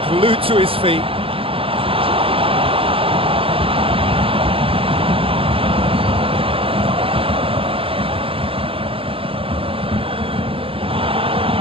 glued to his feet.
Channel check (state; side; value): late; left; 0.26 ms